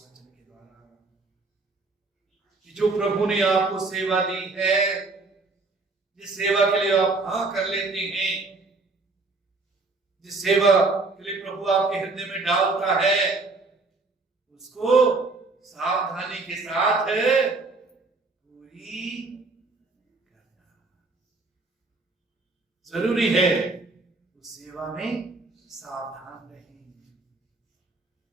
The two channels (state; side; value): quieter; left; 3.6 dB